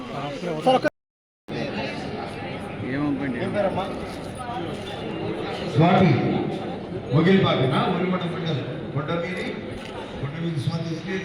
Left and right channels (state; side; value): identical; both; correlation 1.00